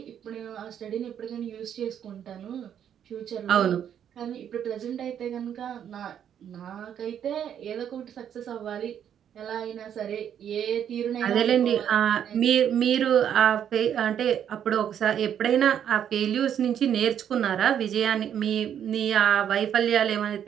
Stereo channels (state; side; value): quieter; left; 9.2 dB